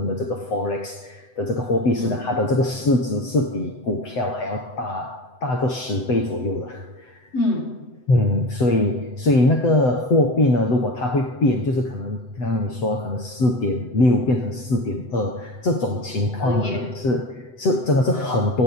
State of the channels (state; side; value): late; right; 7.9 ms